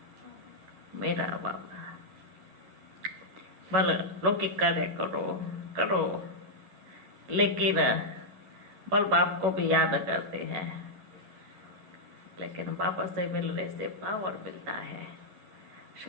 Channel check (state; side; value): late; left; 11 ms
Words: मेरा बाबा। भले लौकिक कार्य करो करो, लेकिन बल बाप को भी याद करते हैं, लेकिन बाबा से मिलने से पावर मिलता है,